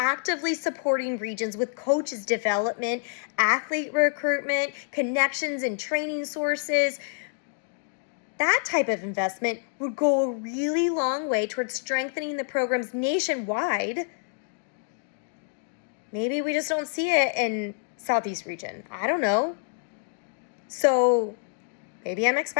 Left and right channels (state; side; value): silent; right; 58 dB below the other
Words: supporting regions with coaches development, athlete recruitment, connections and training sources. That type of investment would go a really long way towards strengthening the programs nationwide. Maybe we just don't see it in Southeast region. I don't know. So maybe I'm